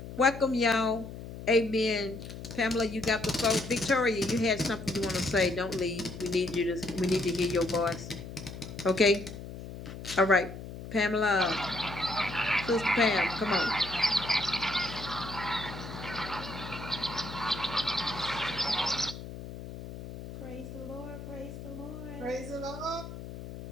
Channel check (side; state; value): left; noise; hum, 11 dB below the sound